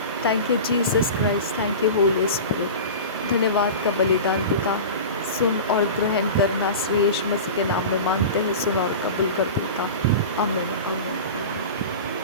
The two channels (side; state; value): both; inverted; correlation -0.31